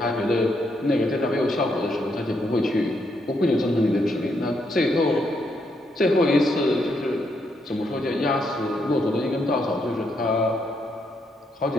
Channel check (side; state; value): both; normal; correlation 0.77